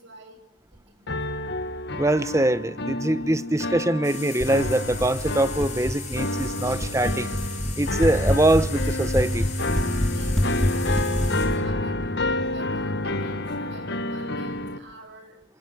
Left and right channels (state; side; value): normal; both; correlation 0.66